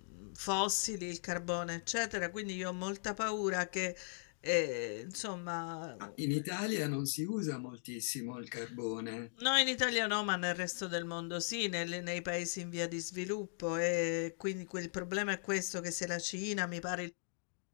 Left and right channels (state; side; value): silent; right; digital silence